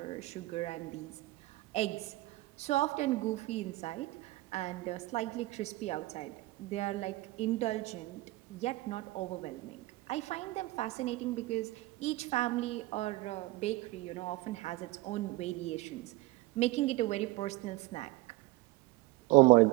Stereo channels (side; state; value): left; quieter; 19.8 dB